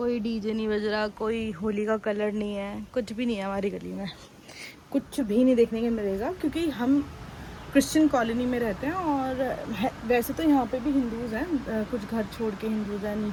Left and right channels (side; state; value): both; identical; correlation 1.00